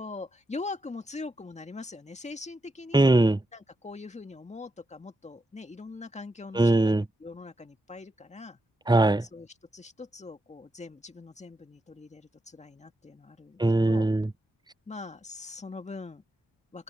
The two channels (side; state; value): both; normal; correlation 0.86